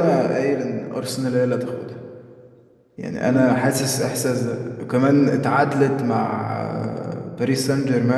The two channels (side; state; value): both; identical; correlation 1.00